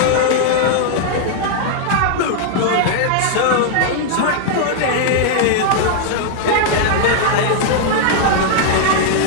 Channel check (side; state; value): both; different; correlation 0.00